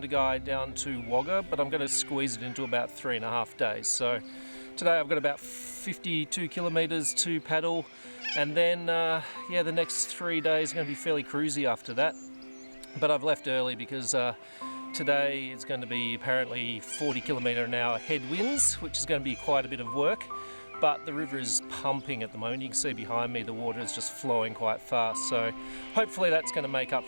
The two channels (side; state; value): both; inverted; correlation -1.00